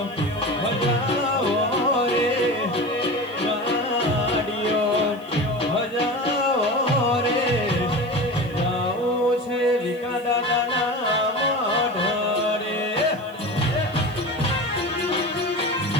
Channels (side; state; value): left; noise; hiss, 29 dB below the sound